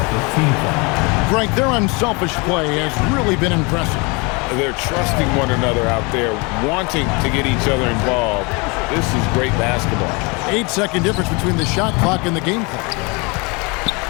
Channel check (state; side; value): quieter; right; 29.0 dB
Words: Frank, their unselfish play has really been impressive. They're trusting one another out there, wanting to get each other involved. This is great basketball. 8-second difference between the shot clock and the game clock.